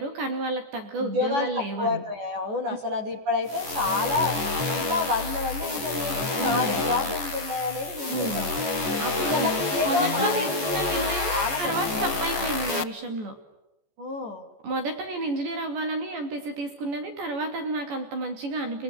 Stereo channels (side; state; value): left; late; 14 ms